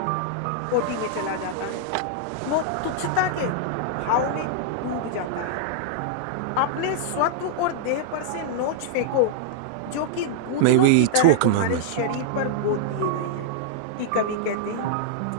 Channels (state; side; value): different; both; correlation -0.01